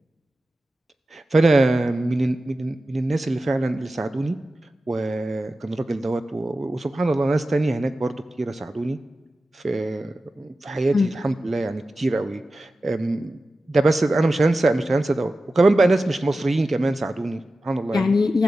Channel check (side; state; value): both; normal; correlation 0.94